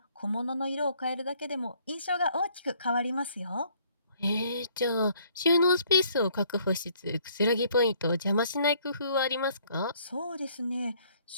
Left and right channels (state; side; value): inverted; both; correlation -0.63